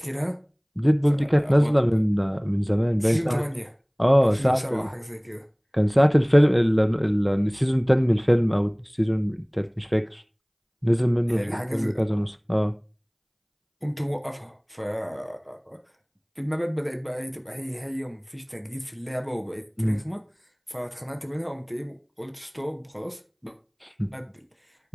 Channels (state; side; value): identical; both; correlation 1.00